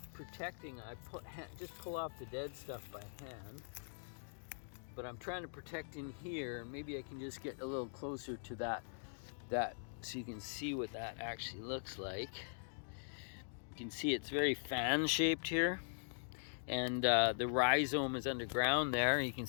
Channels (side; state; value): right; silent; digital silence